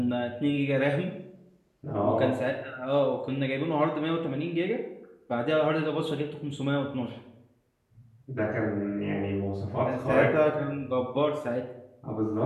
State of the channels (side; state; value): both; identical; correlation 1.00